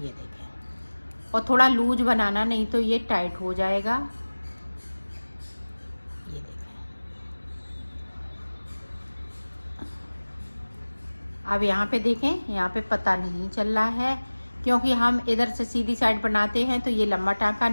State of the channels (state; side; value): inverted; both; correlation -1.00